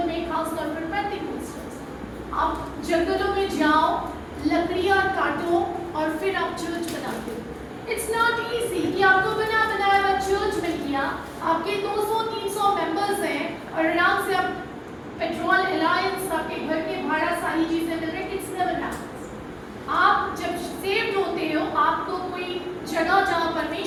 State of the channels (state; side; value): identical; both; correlation 1.00